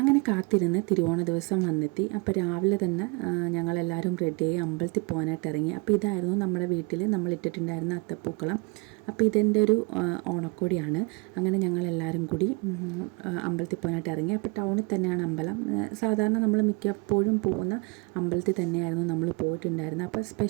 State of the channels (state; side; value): quieter; left; 30.0 dB